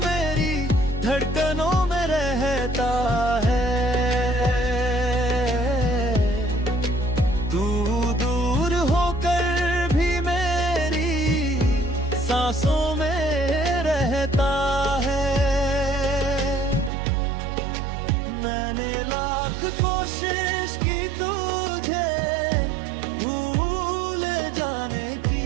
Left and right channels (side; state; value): left; drops out; at 16.9 s